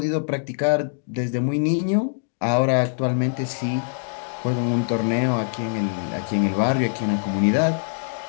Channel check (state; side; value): silent; right; digital silence